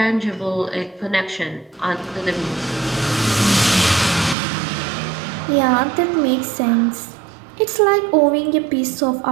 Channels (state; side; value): drops out; left; at 4.4 s